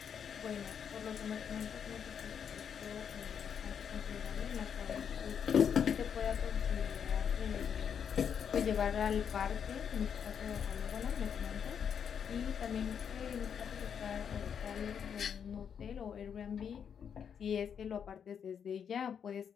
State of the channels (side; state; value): right; quieter; 7.6 dB